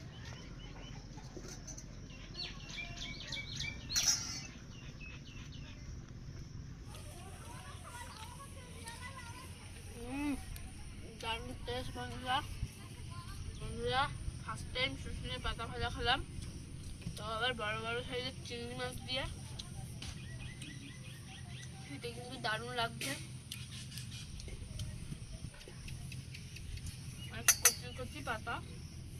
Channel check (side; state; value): both; identical; correlation 1.00